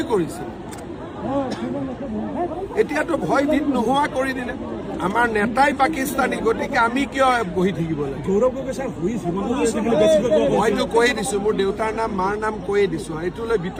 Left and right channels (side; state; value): both; identical; correlation 1.00